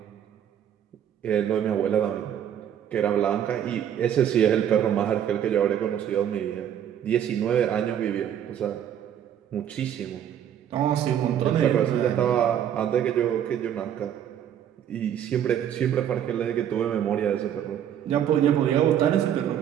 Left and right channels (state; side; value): quieter; left; 9.8 dB